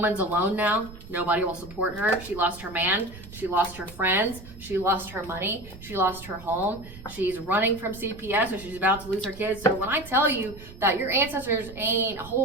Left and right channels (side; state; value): right; noise; rumble, 17 dB below the sound